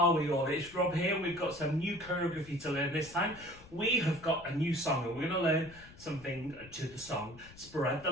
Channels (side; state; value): left; noise; rumble, 21 dB below the sound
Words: we all? It's Rob here. We've got some new choreography to learn this time. We have got a new song and we're going to learn something to the song Spread the